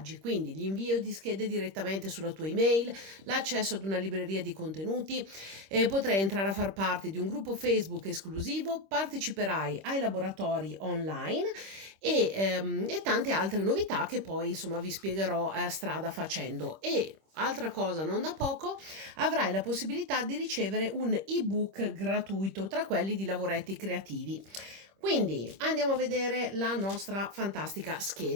Quindi, l'invio di schede direttamente sulla tua email, l'accesso ad una libreria di contenuti, potrai entrare a far parte di un gruppo Facebook esclusivo, parteciperai ai laboratori online e tante altre novità che poi insomma vi spiegherò strada facendo. E altra cosa non da poco, avrai la possibilità di ricevere un ebook gratuito tra quelli di lavoretti creativi. Quindi andiamo a vedere la nostra fantastica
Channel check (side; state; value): left; late; 26 ms